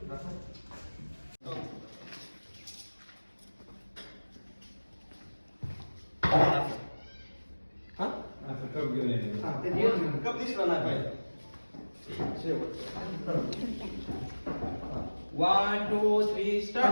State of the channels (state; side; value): inverted; both; correlation -1.00